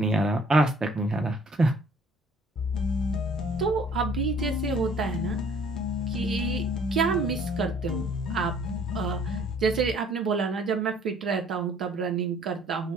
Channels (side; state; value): both; normal; correlation 0.57